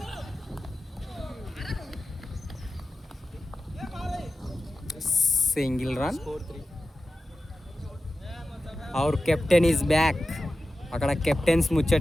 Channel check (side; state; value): both; normal; correlation 0.94